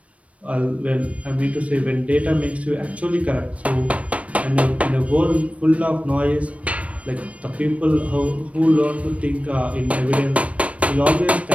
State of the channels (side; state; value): left; late; 0.065 ms